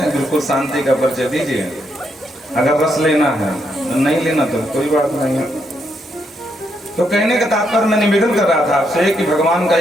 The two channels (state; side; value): normal; both; correlation 0.78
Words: बिल्कुल शांति का परिचय दीजिए। अगर रस लेना है, नहीं लेना तो कोई बात नहीं है। तो कहने का तात्पर्य मैं निवेदन कर रहा था आपसे कि भगवान का